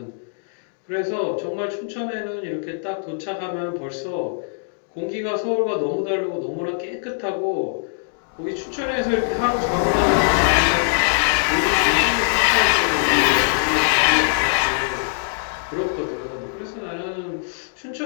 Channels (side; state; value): right; silent; digital silence